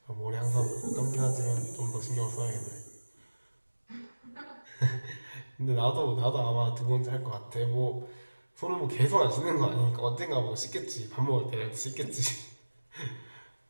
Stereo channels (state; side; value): inverted; both; correlation -1.00